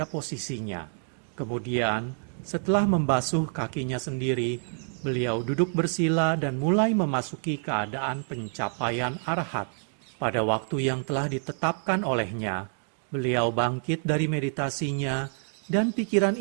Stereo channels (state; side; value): silent; left; 58 dB below the other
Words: posisinya. Kemudian, setelah membasuh kakinya sendiri, beliau duduk bersila dan mulai memasuki keadaan pencapaian arahat. Pada waktu yang telah ditetapkan olehnya, beliau bangkit dari meditasinya dan pikiran